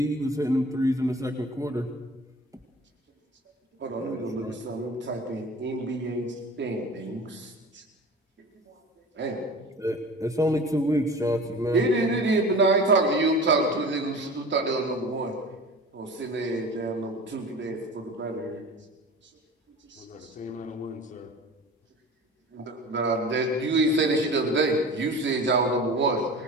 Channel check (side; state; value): both; normal; correlation 0.38